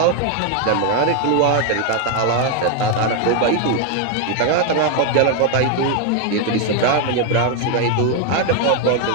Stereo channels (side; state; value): both; different; correlation 0.01